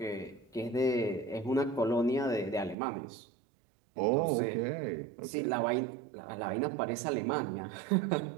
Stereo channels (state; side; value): drops out; left; at 2.8 s